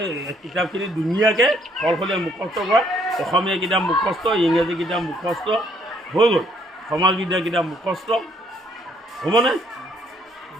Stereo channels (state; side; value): normal; both; correlation 0.66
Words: কিতাপখিনি ধুনীয়াকৈ সলসলীয়া মুখস্থ কৰা অসমীয়া কিতাপ মুখস্থ ইংৰাজী কিতাপ মুখস্থ হৈ গ'ল সমাজবিদ্যা কিতাপ মুখস্থ হ'বনে